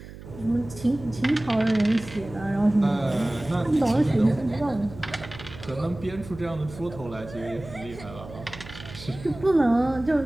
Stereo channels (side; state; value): right; noise; hum, 15 dB below the sound